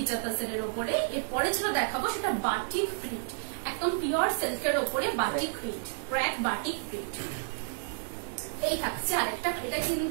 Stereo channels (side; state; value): left; silent; digital silence